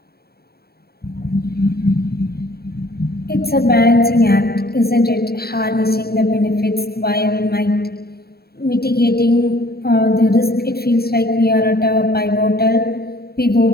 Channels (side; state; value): right; late; 0.45 ms